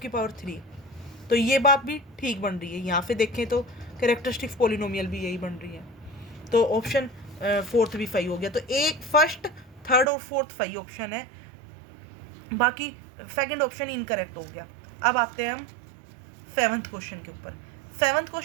पावर 3, तो ये बात भी ठीक बन रही है। यहाँ पे देखें तो कैरेक्टरिस्टिक्स पॉलिनोमियल भी यही बन रही है। तो ऑप्शन फोर्थ भी सही हो गया। तो एक फर्स्ट थर्ड और फोर्थ सही ऑप्शन है, बाकी सेकंड ऑप्शन इनकरेक्ट हो गया। अब आते हैं हम सेवंथ क्वेश्चन के ऊपर। सेवंथ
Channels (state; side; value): drops out; left; at 10.1 s